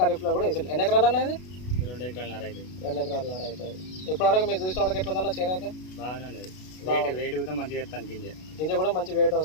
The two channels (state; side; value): late; right; 33 ms